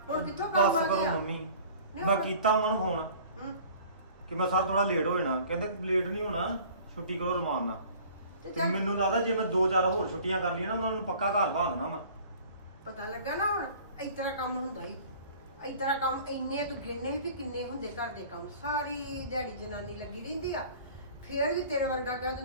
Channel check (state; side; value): inverted; both; correlation -0.48